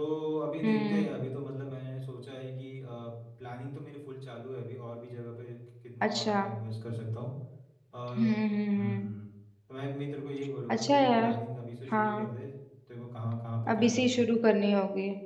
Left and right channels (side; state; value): both; identical; correlation 1.00